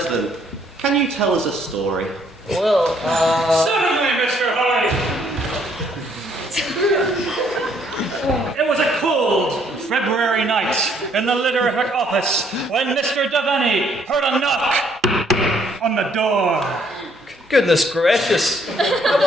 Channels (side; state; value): both; normal; correlation 0.67